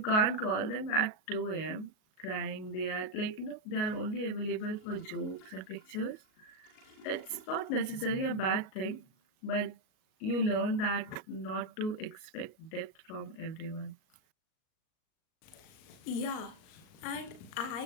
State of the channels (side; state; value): right; late; 38 ms